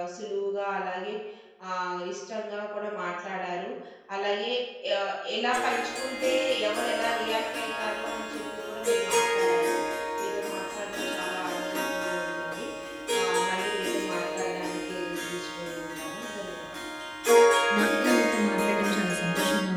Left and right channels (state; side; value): identical; both; correlation 1.00